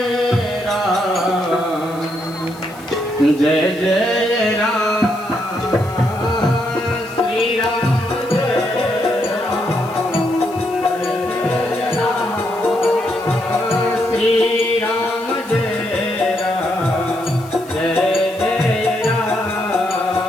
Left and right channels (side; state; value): left; noise; hiss, 22 dB below the sound